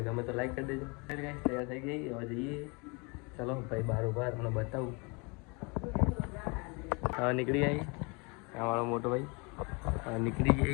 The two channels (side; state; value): right; quieter; 30.3 dB